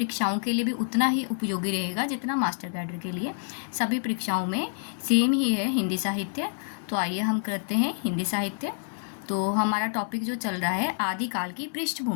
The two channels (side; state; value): right; silent; digital silence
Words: के लिए भी उतना ही उपयोगी रहेगा जितना मास्टर कैडर के लिए। सभी परीक्षाओं में सेम ही है हिंदी साहित्य। तो आइए हम करते हैं हिंदी साहित्य। तो हमारा टॉपिक जो चल रहा है आदिकाल की